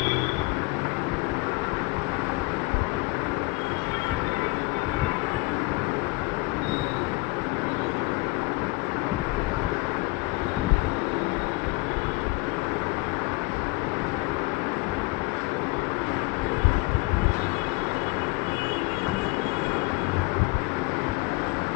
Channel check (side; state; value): right; quieter; 25.2 dB